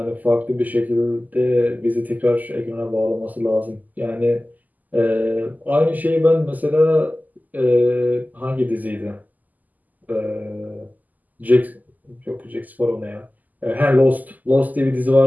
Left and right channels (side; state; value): left; late; 0.081 ms